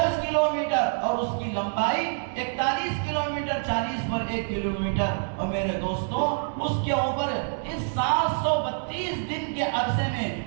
کلومیٹر اور اس کی لمبائی 41 کلومیٹر، 40 پر 1 کلومیٹر۔ اور میرے دوستوں، اس کے اوپر اس 732 دن کے عرصے میں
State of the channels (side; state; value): left; silent; digital silence